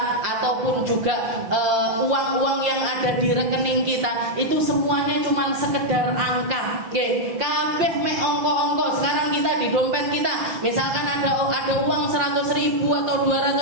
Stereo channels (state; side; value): late; left; 5.7 ms